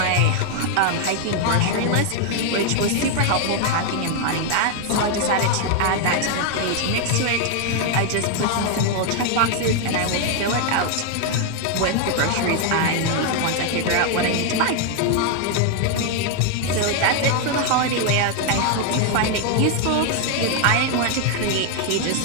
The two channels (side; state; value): both; different; correlation 0.01